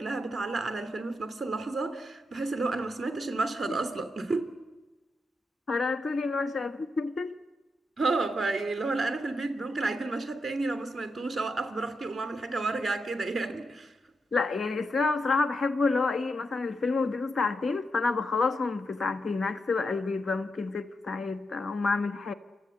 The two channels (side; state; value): both; normal; correlation 0.85